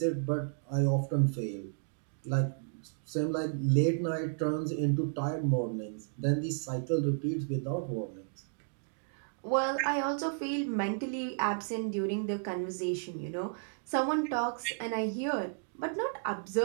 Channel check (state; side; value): silent; left; digital silence